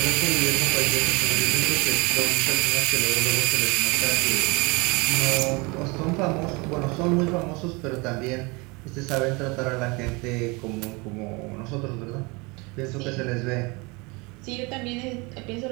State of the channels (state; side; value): quieter; left; 27.2 dB